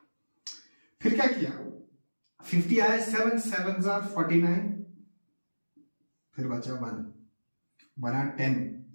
फिर क्या किया? 50 आया, 7 7 49, फिर बचा 1, बना 10।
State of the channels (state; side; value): inverted; both; correlation -1.00